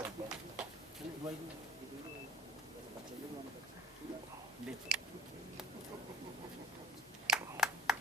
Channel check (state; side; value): normal; both; correlation 0.44